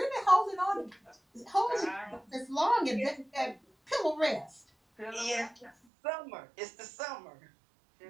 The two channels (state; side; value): drops out; left; at 5.7 s